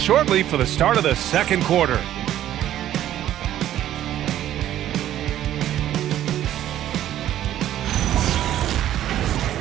for the start of the second quarter.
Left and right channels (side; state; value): left; quieter; 12.2 dB